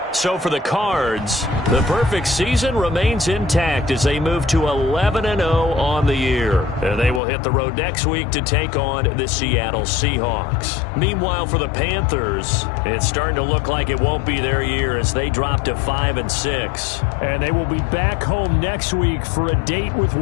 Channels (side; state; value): right; drops out; at 7.2 s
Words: So for the Cards, the perfect season remains intact as they move to 11-0 on the year. And they will hit the road next week to take on the Seattle Seahawks. Meanwhile, for the Panthers, it's starting to look like it won't be their year as they drop to 5-6. And they will be back home next week for a date with